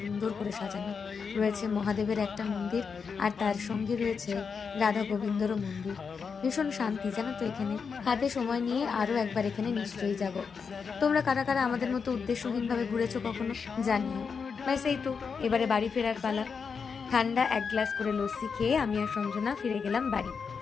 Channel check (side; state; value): right; quieter; 5.8 dB